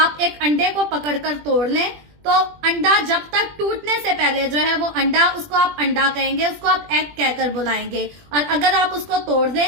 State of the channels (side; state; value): left; late; 20 ms